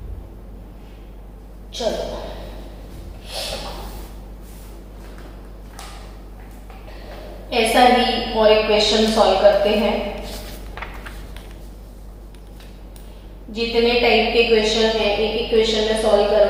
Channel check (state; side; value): identical; both; correlation 1.00